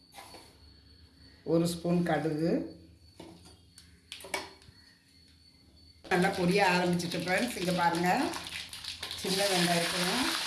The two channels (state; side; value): identical; both; correlation 1.00